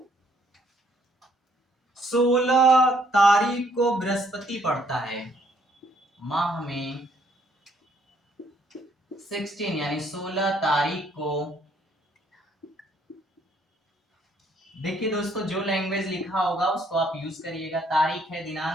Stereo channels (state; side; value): normal; both; correlation 0.67